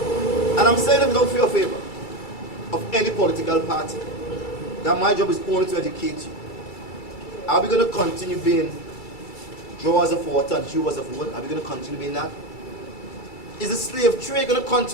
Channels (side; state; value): right; late; 2.3 ms